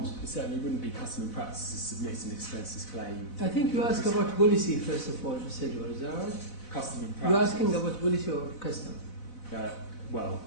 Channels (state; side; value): late; right; 4.0 ms